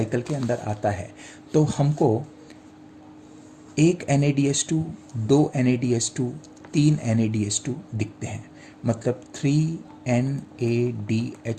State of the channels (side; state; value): both; identical; correlation 1.00